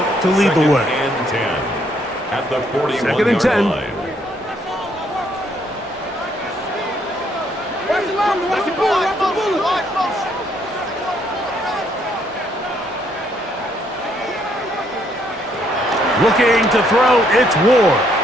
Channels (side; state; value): both; normal; correlation 0.70